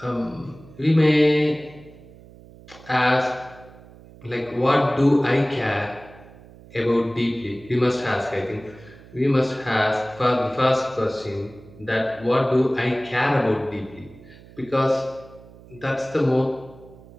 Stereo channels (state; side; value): noise; right; hum, 21 dB below the sound